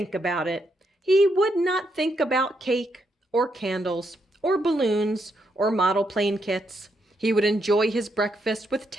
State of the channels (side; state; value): both; normal; correlation 0.79